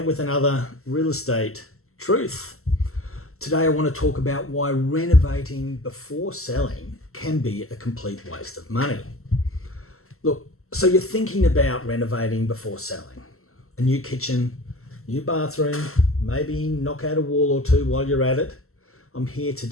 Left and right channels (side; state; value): right; late; 0.63 ms